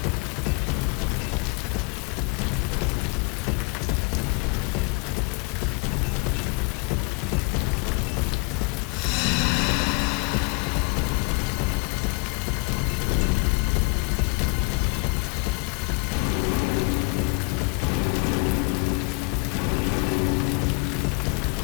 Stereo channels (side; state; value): right; quieter; 28.9 dB